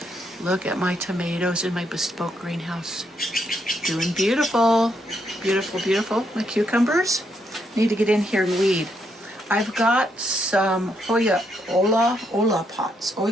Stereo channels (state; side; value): normal; both; correlation 0.77